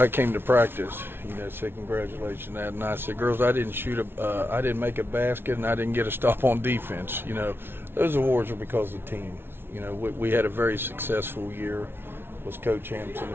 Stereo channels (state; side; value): late; left; 0.11 ms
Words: came to practice, said congratulations on that, and I said, girls, I didn't make a basket, and I didn't get a stop on defense. Those awards are because of the team. We had a very successful year, was co-champs in the